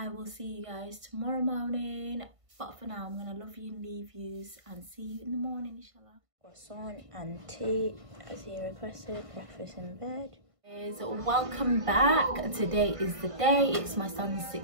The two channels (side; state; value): left; late; 1.5 ms